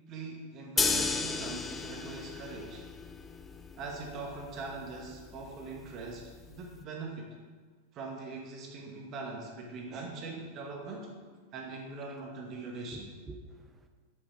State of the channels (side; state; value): both; normal; correlation 0.52